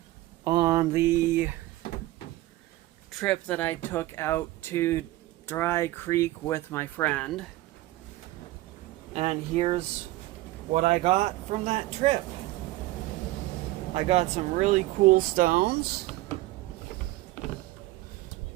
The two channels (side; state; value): left; quieter; 17.4 dB